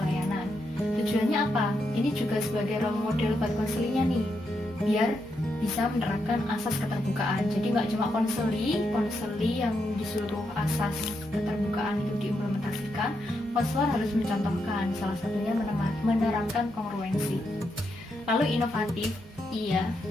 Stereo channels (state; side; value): normal; both; correlation 0.82